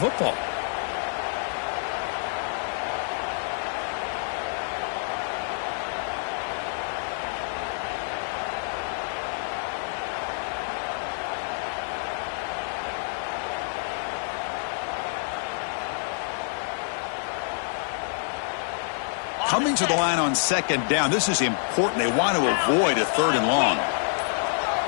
Coming to the line on second down. This is important. They want to avoid a 3rd and long.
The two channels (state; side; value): silent; right; digital silence